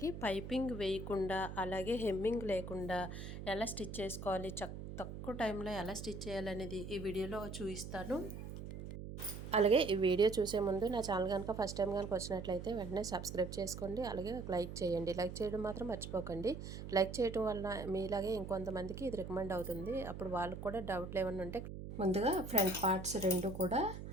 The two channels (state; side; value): noise; right; hum, 9 dB below the sound